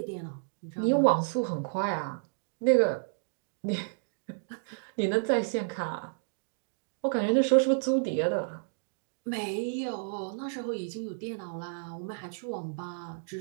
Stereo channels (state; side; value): silent; left; digital silence